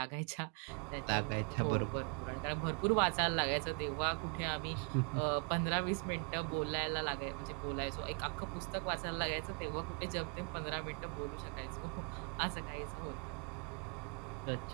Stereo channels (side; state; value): left; quieter; 37.5 dB